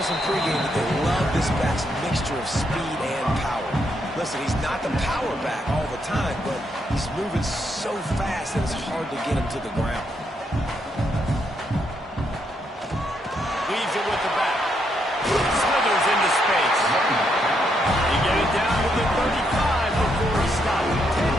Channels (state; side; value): normal; both; correlation 0.77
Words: in pregame that they love this back's mixture of speed and power. Listen, he's not the power back all the time, but he's moving so fast that it's hard to get him to the ground. Leaves it with the back. Slithers into space. He get it down to the 35 before he stops.